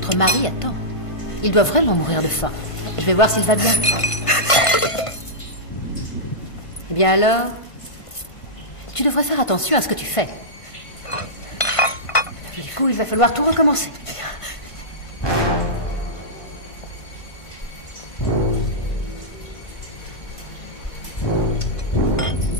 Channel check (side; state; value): right; late; 1.5 ms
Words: mari attend. Il doit vraiment mourir de faim. Je vais voir s'il va bien. Eh bien alors, tu devrais faire attention à ce que tu fais. Du coup, il va falloir tout recommencer.